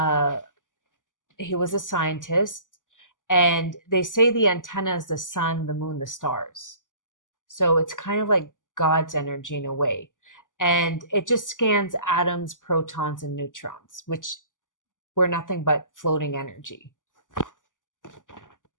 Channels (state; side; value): late; right; 0.87 ms